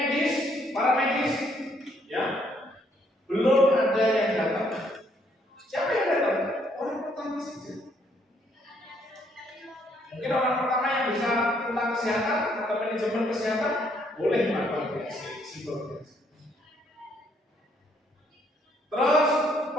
para medis, ya, belum ada yang datang. Siapa yang datang? Orang pertama saja. Mungkin orang pertama yang bisa tentang kesehatan atau manajemen kesehatan boleh melakukan triase, simple triase. Terus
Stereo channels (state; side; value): normal; both; correlation 0.69